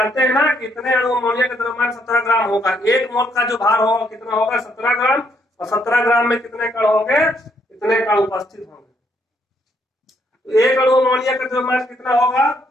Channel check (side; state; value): both; normal; correlation 0.71